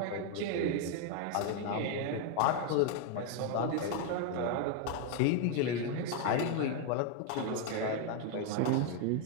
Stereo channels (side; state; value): both; different; correlation 0.01